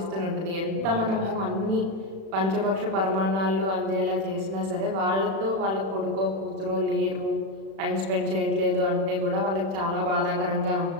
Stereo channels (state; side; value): late; left; 36 ms